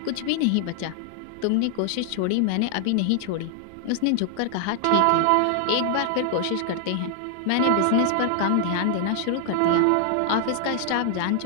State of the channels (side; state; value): both; different; correlation -0.01